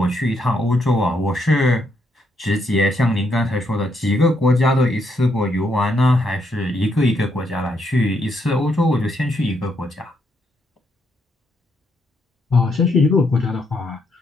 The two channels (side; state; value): both; normal; correlation 0.76